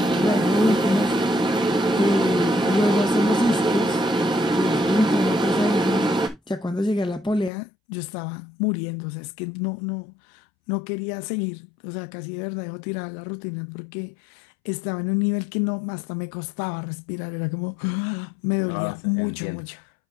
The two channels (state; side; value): drops out; right; at 7.5 s